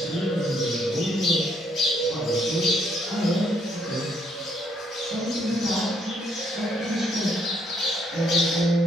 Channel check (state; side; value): normal; both; correlation 0.71